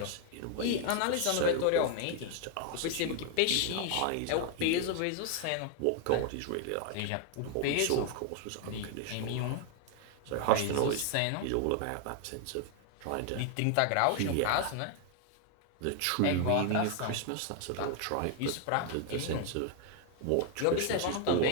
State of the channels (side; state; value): both; different; correlation 0.00